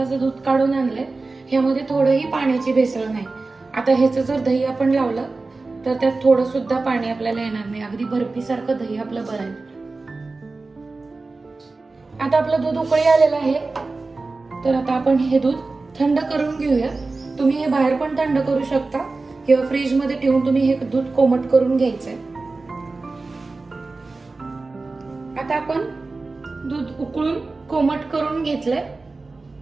दूध काढून आणलंय। ह्यामध्ये थोडंही पाण्याची भेसळ नाही। आता ह्याचं जर दही आपण लावलं तर त्यात थोडं सुद्धा पाणी आपल्याला येणार नाही। अगदी बर्फी सारखं दही आपलं बनेल। आता आपलं दूध उकळी आलेलं आहे। तर आता आपण हे दूध थंड करून घेऊया। तुम्ही हे बाहेर पण थंड करू शकता किंवा फ्रीज मध्ये ठेवून तुम्ही हे दूध कोमट करून घ्यायचंय। आता आपण दूध उकळून कोमट करून घेतलंय।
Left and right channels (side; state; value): left; quieter; 3.6 dB